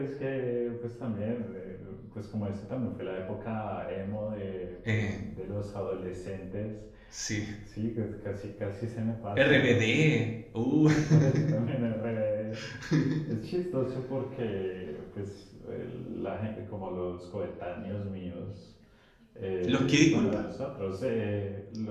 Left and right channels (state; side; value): identical; both; correlation 1.00